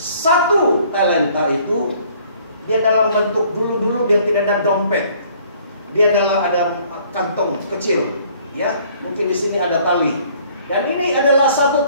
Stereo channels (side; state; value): both; inverted; correlation -0.58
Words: talenta itu dia dalam bentuk dulu dia tidak ada dompet. Dia ada kantong kecil, ya. Mungkin di sini ada tali. Dan ini adalah satu